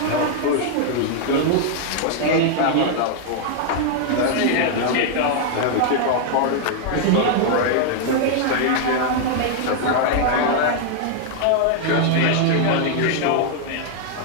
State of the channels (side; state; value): both; different; correlation 0.00